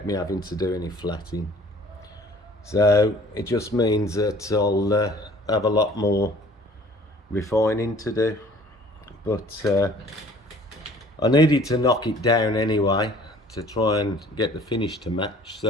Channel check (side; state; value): both; normal; correlation 0.52